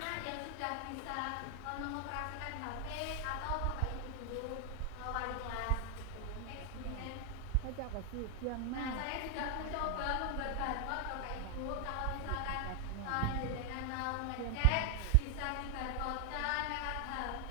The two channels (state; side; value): different; both; correlation 0.00